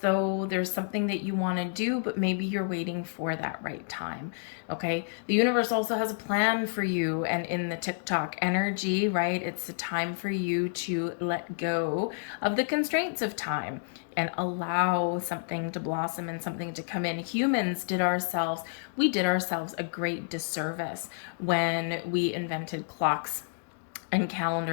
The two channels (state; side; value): silent; right; digital silence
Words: there's something that you want to do, but maybe you're waiting for that right time. Okay. The universe also has a plan for you. And in the TikTok energy, right, it's a time for you to let go of the constraints of time and allow something to blossom and something to come in. We did ourselves a great disservice when we invented clocks and